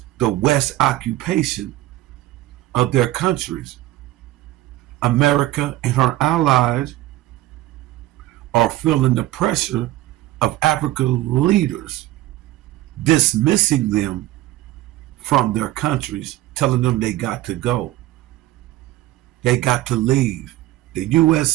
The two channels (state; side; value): quieter; left; 16.2 dB